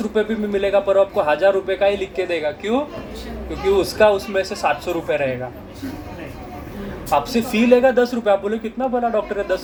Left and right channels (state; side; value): identical; both; correlation 1.00